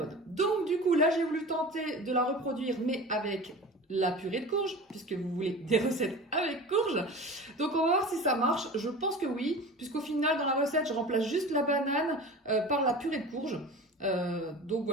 Donc du coup, là, j'ai voulu tenter de la reproduire, mais avec la purée de courge, puisque vous voulez des recettes avec courge. Donc on va voir si ça marche. Je pense que oui, puisqu'au final dans la recette je remplace juste la banane par la purée de courge. Donc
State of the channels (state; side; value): normal; both; correlation 0.35